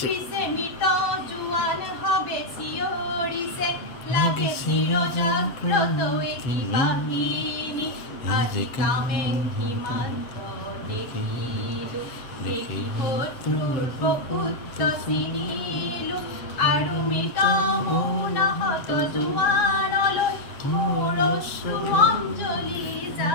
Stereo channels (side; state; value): right; late; 7.7 ms